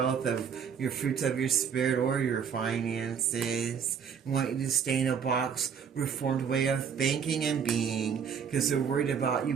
of your fruits of your spirit or your finances, want you to stay in a box, reformed way of thinking and being, because they're worried about you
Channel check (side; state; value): left; quieter; 7.1 dB